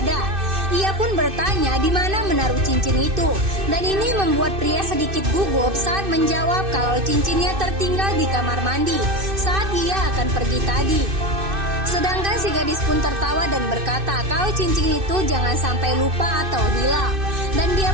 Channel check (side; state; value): left; late; 2.6 ms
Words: ada. Ia pun bertanya di mana menaruh cincin itu. Dan ini membuat pria sedikit gugup saat menjawab kalau cincinnya tertinggal di kamar mandi saat ia akan pergi tadi. Sedangkan si gadis pun tertawa dan berkata kalau cincin itu jangan sampai lupa atau hilang. Dan dia